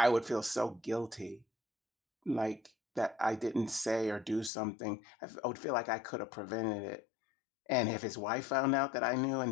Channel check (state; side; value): drops out; right; at 4.5 s